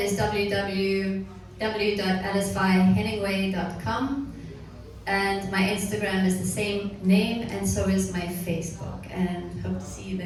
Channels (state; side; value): identical; both; correlation 1.00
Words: www.alicevyehenningway.com, and my Instagram is the same name, and so is my Facebook, and hope to see you